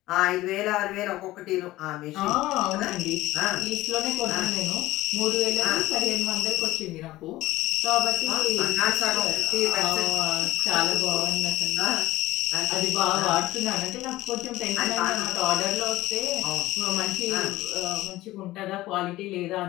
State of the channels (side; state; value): right; quieter; 17.2 dB